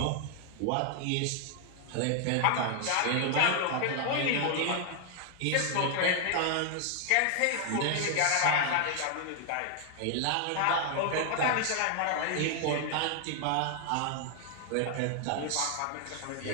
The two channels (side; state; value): both; different; correlation 0.00